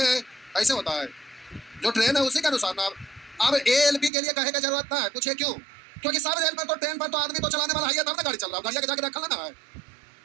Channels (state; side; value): drops out; left; at 4.1 s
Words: ऐसे होता है। जो ट्रेन है उसी के अनुसार ना। अब एएलपी के लिए कहे का जरूरत ना है, पूछिए क्यों? क्योंकि सब रेल पर तो ट्रेन पर तो आदमी तो चलाने वाला है, तब ना गाड़ी चल रहा है, गाड़िया के जाके रखल ना है।